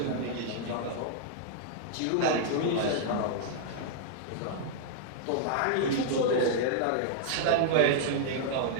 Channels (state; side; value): different; both; correlation -0.01